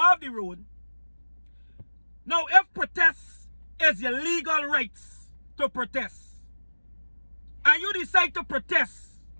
the road. Now, if protest is your legal rights to protest, and you decide to protest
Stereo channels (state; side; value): inverted; both; correlation -1.00